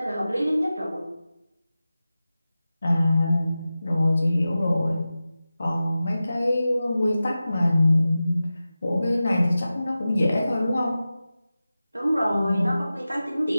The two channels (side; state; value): both; inverted; correlation -0.95